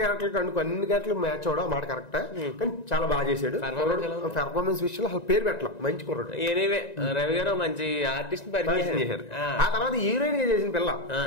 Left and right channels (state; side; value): late; right; 1.9 ms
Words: అన్ని క్యారెక్టర్ మ్యాచ్ అవడం మాట కరెక్ట్. కానీ చాలా బాగా చేశాడు. పెర్ఫార్మెన్స్ విషయంలో అసలు పేరు పెట్టాం, మంచి కుర్రాడు. ఎనీవే రవి గారు మంచి ఆర్టిస్ట్ పరిచయం చేశారు. ఆ తర్వాత హీరోయిన్ గా చేసిన పిల్ల